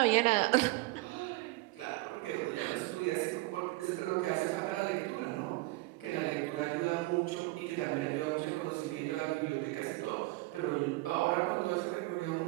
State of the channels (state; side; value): quieter; left; 21.5 dB